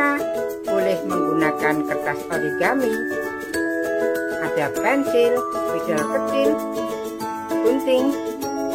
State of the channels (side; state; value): both; identical; correlation 1.00